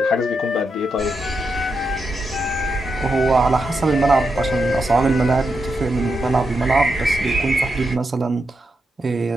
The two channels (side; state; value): both; normal; correlation 0.85